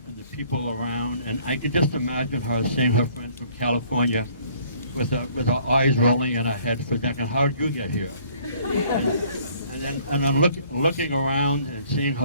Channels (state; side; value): inverted; both; correlation -0.58